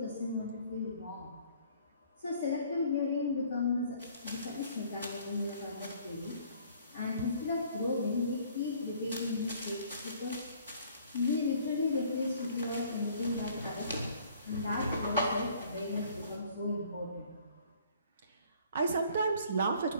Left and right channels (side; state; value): both; inverted; correlation -0.57